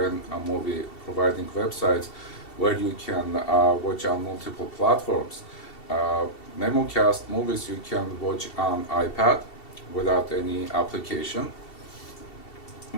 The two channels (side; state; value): right; late; 2.7 ms